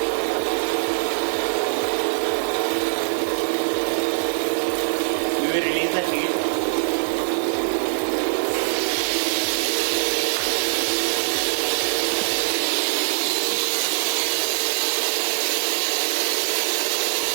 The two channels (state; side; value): silent; left; 64 dB below the other